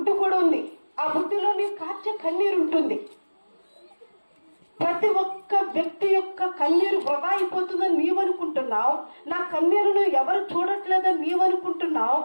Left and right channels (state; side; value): inverted; both; correlation -1.00